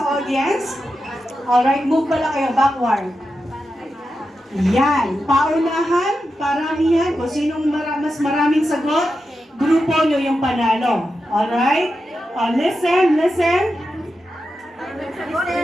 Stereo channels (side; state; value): both; normal; correlation 0.89